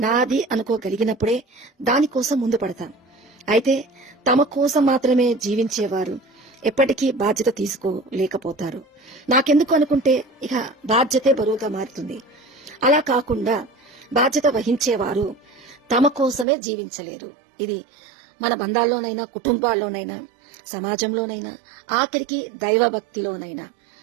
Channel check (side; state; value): left; drops out; at 16.4 s